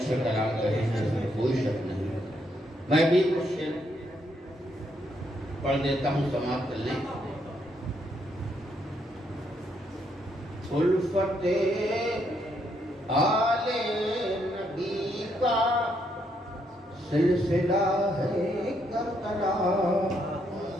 کلام کہے ہیں، اس میں کوئی شک نہیں۔ میں بھی کچھ شعر پڑھ دیتا ہوں، سماعت کر لیں۔ الفت آل نبی کا سلسلہ ہے کربلا۔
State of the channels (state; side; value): normal; both; correlation 0.75